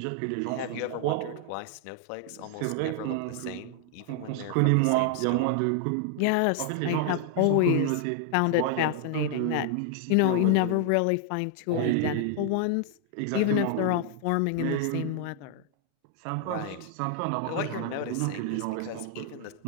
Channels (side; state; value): both; different; correlation 0.00